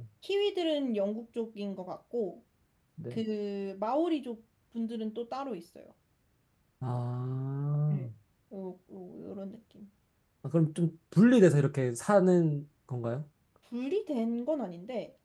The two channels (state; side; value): identical; both; correlation 1.00